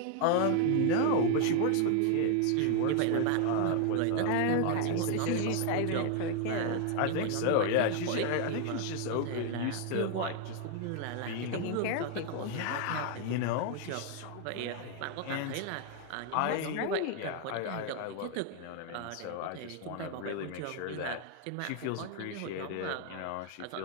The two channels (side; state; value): both; different; correlation 0.00